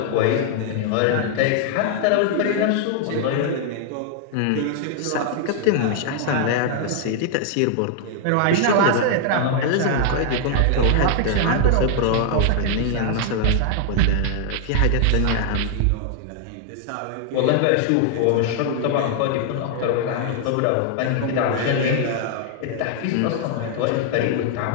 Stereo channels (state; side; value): different; both; correlation 0.00